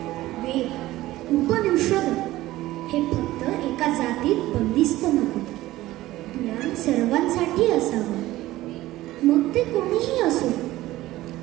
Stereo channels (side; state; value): left; quieter; 16.5 dB